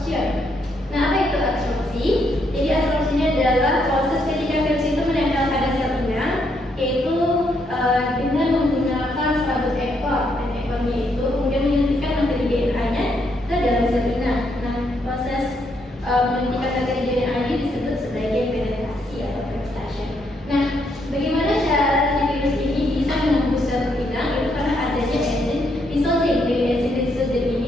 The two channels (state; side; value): normal; both; correlation 0.75